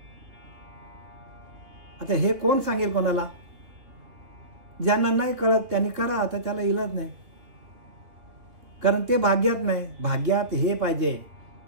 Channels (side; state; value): left; late; 2.7 ms